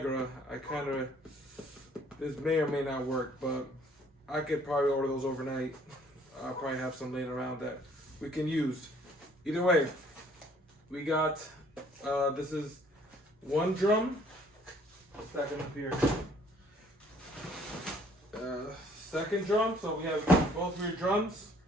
this may or may not work, but I could probably order those overnight. I'll probably have some laying around that we can use. Either way, we got this is one drum. Stack them up here. Second drum, so we have both rear drums.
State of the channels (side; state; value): both; normal; correlation 0.60